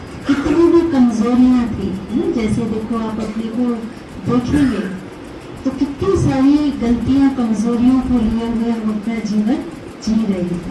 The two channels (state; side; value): identical; both; correlation 1.00